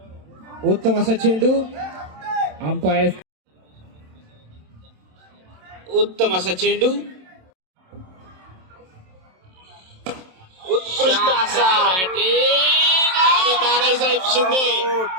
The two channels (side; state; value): left; late; 27 ms